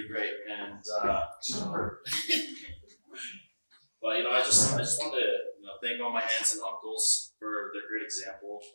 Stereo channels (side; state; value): both; inverted; correlation -1.00